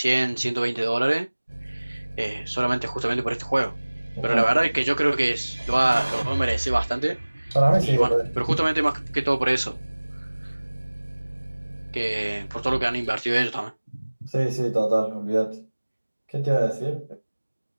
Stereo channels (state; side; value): inverted; both; correlation -1.00